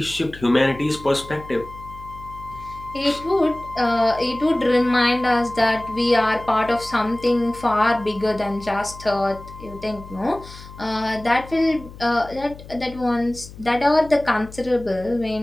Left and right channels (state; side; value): noise; left; hum, 17 dB below the sound